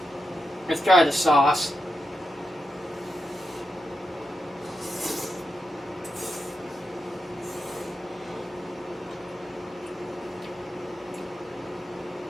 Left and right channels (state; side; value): normal; both; correlation 0.87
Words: let's try the sauce.